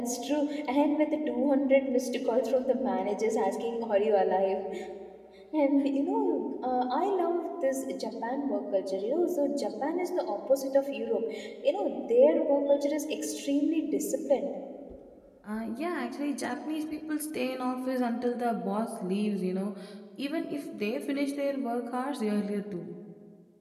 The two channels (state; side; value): identical; both; correlation 1.00